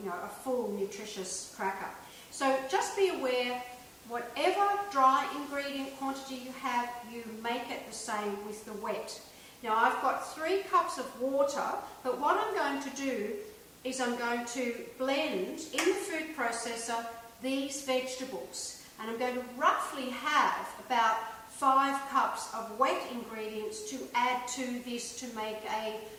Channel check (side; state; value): both; identical; correlation 1.00